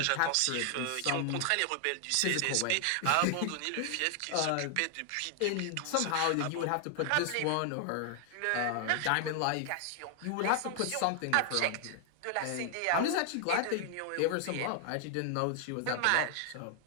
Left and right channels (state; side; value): different; both; correlation 0.00